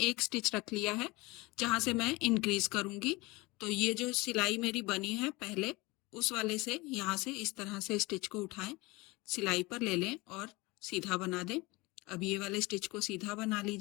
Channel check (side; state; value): right; quieter; 23.2 dB